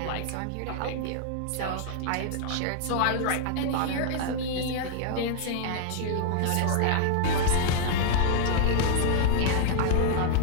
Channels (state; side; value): different; both; correlation -0.01